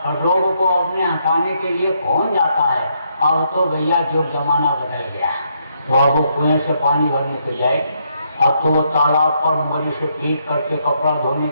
और रोग को अपने हटाने के लिए कौन जाता है? अब तो भैया जो जमाना बदल गया, तो अब वो कुएं से पानी भरने तो जाए, अब तो वो तालाब पर उंगली से पीट करके कपड़ा धोने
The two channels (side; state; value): both; inverted; correlation -0.75